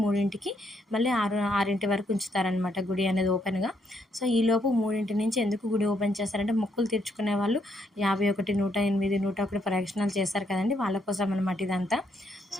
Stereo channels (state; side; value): normal; both; correlation 0.74